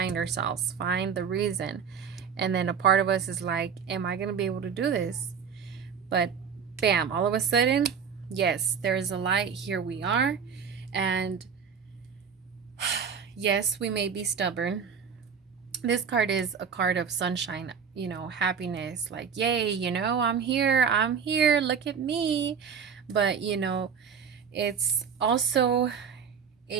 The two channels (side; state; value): left; quieter; 6.7 dB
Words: find the reason. And then a part of us is like, am I going to be able to do this? But bam, all of a sudden, yes, there is a light. Here we are. And yes, we may be stubborn. This card is a card of sunshine, you know, happiness, like, yay, you know, I'm here, look at me. But, you know, it's also